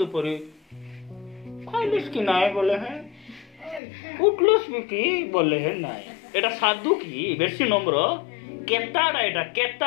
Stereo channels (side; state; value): right; drops out; at 3.8 s